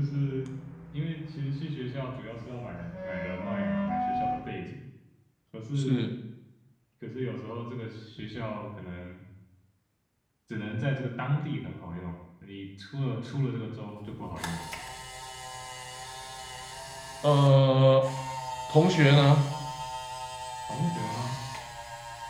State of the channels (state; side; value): identical; both; correlation 1.00